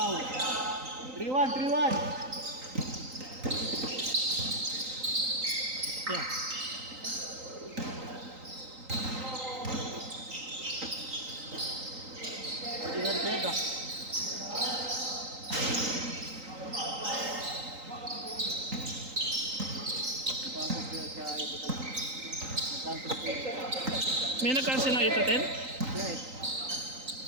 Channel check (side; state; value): left; late; 3.9 ms